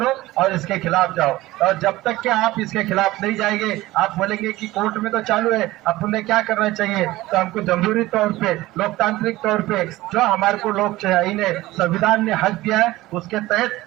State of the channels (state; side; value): quieter; left; 17.8 dB